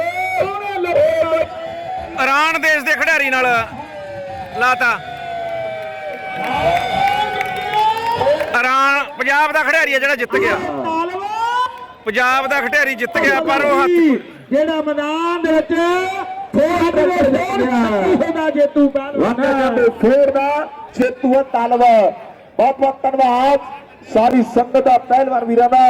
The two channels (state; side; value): identical; both; correlation 1.00